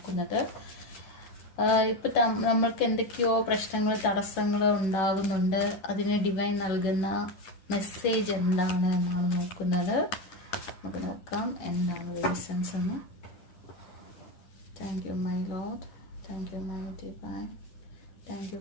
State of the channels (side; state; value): right; late; 11 ms